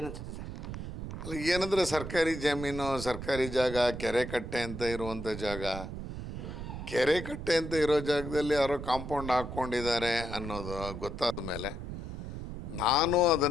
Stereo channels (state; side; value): noise; right; rumble, 8 dB below the sound